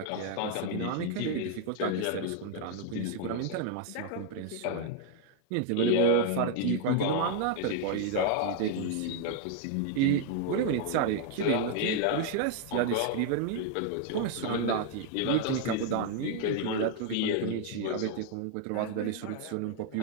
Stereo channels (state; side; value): different; both; correlation 0.00